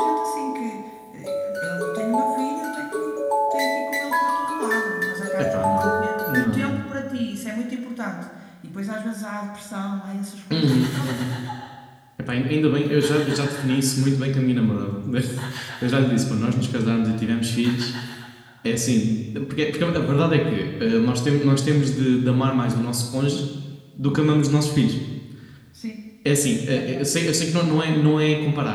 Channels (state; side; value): identical; both; correlation 1.00